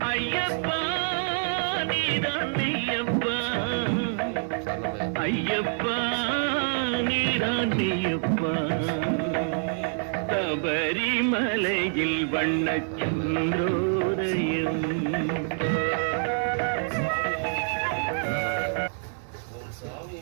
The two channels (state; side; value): silent; left; digital silence